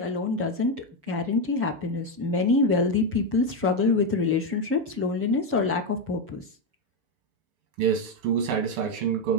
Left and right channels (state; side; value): late; left; 6.9 ms